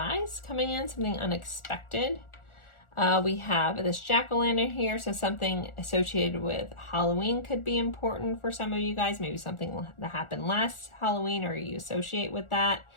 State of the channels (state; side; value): late; right; 1.4 ms